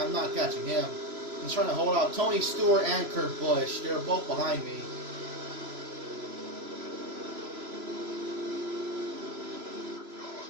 not catching him. He's trying to hold out Tony Stewart and Kurt Busch. They're both behind me.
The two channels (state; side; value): late; left; 3.0 ms